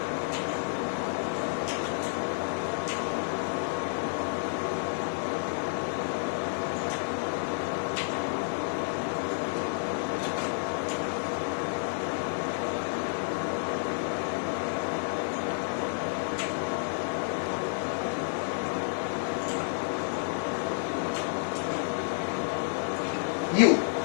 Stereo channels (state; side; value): silent; right; digital silence